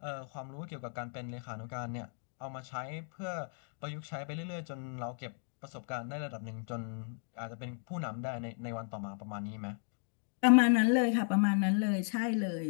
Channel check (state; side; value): silent; right; 54 dB below the other